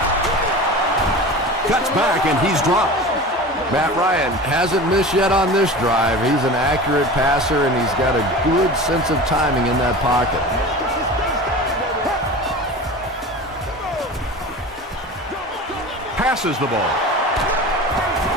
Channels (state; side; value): normal; both; correlation 0.34